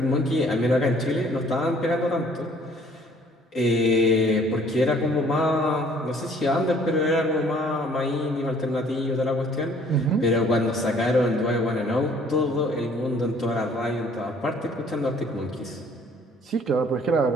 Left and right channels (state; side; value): normal; both; correlation 0.58